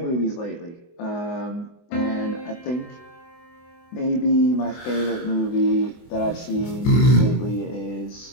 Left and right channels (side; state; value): right; late; 24 ms